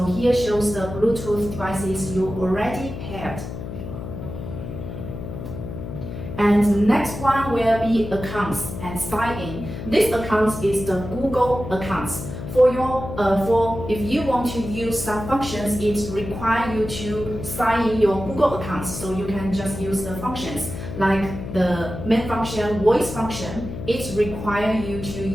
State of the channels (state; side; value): noise; left; hum, 8 dB below the sound